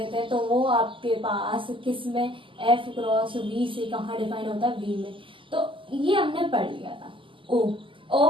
हैं, तो वो आपके पास किस में एफ क्रॉस वी से कहाँ डिफाइन होता है, वी में। तो ये हमने पढ़ लिया था। ओ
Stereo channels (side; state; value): left; late; 0.25 ms